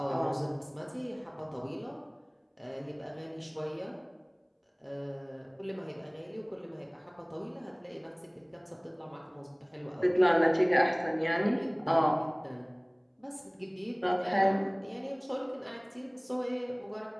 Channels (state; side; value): identical; both; correlation 1.00